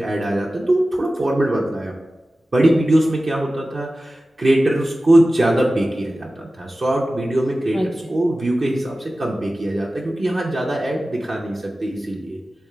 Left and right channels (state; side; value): normal; both; correlation 0.96